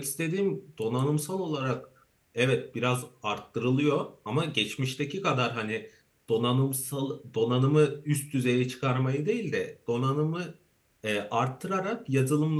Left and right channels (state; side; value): identical; both; correlation 1.00